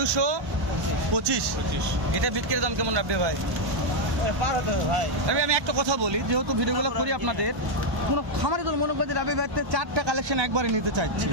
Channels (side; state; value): left; late; 1.1 ms